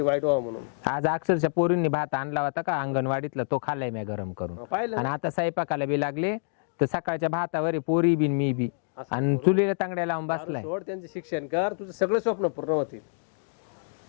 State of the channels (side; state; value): right; silent; digital silence